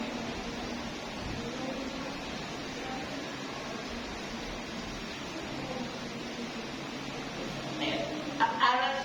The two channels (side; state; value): both; identical; correlation 1.00